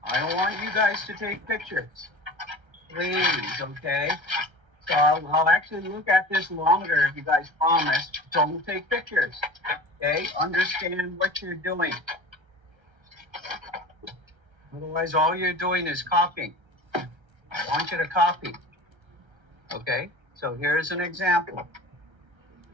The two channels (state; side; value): late; left; 1.3 ms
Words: I don't want you guys to take pictures. Please, okay? So I'll actually look at this longer if you guys promise. Don't take pictures. Okay? Understand what you're doing. Otherwise, all you're doing is copying. I want you to copy. Okay? So here's an example.